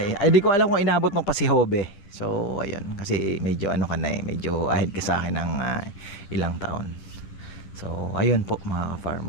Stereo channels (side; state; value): right; late; 9.9 ms